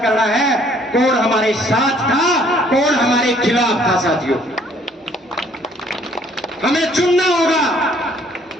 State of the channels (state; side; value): normal; both; correlation 0.61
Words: करना है कौन हमारे साथ था, कौन हमारे खिलाफ था साथियों। हमें चुनना होगा